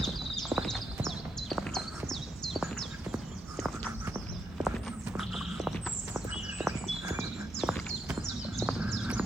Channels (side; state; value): both; normal; correlation 0.81